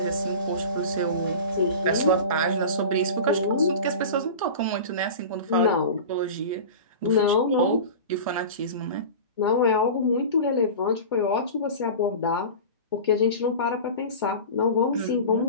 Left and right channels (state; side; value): inverted; both; correlation -0.32